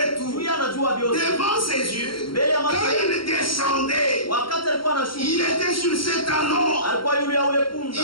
tout. Juu yeye anajua vyote. Devant ses yeux, Mbele ya macho quand yake, il descendait, wakati alikuwa anashuka, il était sur cet anneau. alikuwa yule ya ule punda.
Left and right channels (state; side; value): late; right; 0.73 ms